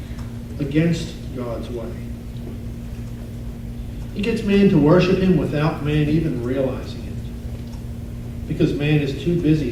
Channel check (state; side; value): identical; both; correlation 1.00